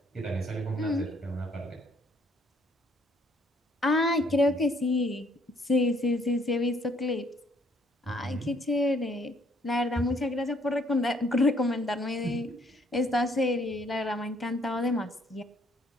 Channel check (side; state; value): both; normal; correlation 0.65